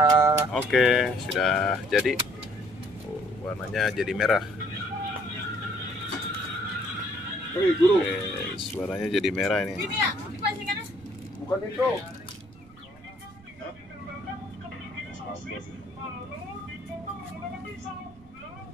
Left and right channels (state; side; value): noise; right; rumble, 24 dB below the sound